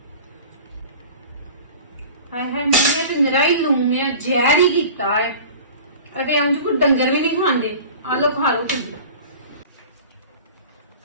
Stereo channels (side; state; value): both; inverted; correlation -0.40